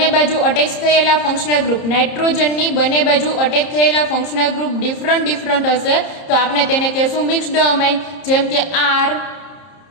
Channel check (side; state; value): right; late; 30 ms